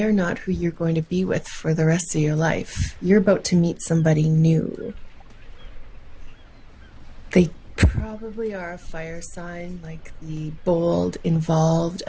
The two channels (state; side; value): identical; both; correlation 1.00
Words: are not who you're going to be with for the rest of your life. You're about to meet somebody new. They probably are a fire sign, like the bold, involved,